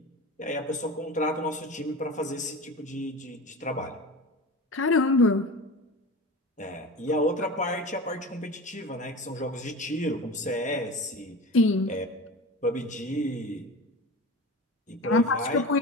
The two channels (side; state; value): both; normal; correlation 0.31